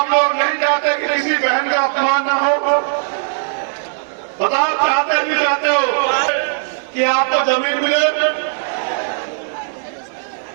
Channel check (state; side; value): silent; left; digital silence